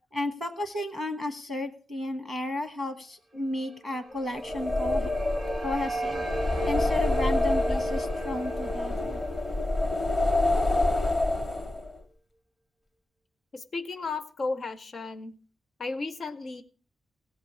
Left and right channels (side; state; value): both; normal; correlation 0.91